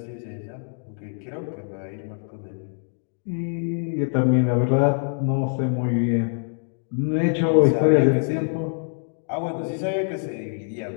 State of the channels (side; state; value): right; silent; 62 dB below the other